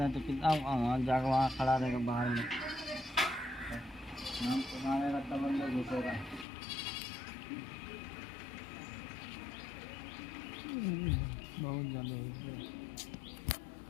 है तो कितना जाकर वहाँ खड़ा रहेगा बाहर में, नाम मारेगा तब अंदर घुसेगा। बहुत ज़्यादा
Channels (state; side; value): drops out; right; at 6.5 s